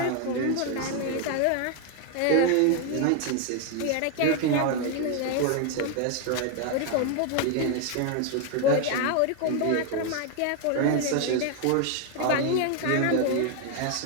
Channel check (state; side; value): different; both; correlation 0.01